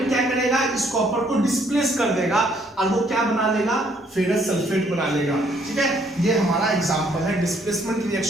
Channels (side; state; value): both; normal; correlation 0.66